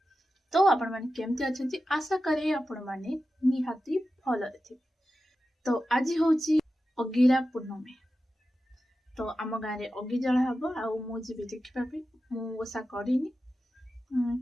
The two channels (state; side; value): normal; both; correlation 0.92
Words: तो आपण माने केमती अछंती आशा करे आपण माने निहाती भल थे। तो आज होची अगिरा पूर्णमी। तो आम गाँव में अगि जला हम आउ जी देखा मु ओषा करनी